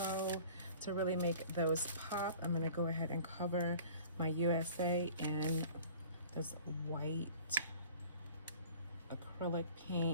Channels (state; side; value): inverted; both; correlation -0.47